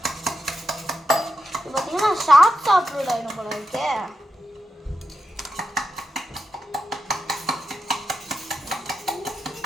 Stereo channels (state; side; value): normal; both; correlation 0.88